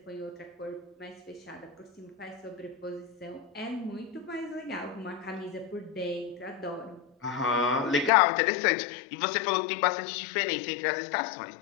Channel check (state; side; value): drops out; right; at 8.1 s